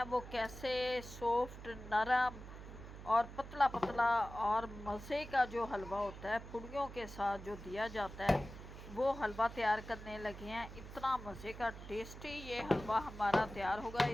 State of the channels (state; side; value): noise; right; hum, 13 dB below the sound